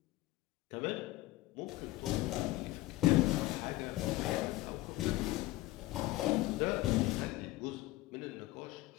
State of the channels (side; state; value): right; quieter; 18.4 dB